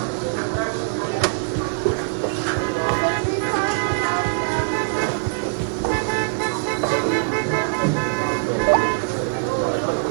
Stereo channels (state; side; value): silent; left; digital silence